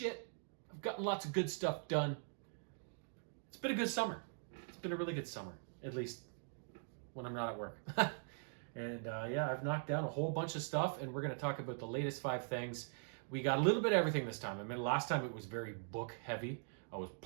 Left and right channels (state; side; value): silent; left; digital silence